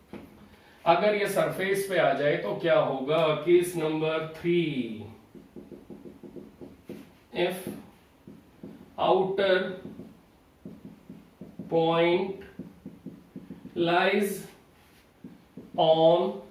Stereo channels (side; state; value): both; identical; correlation 1.00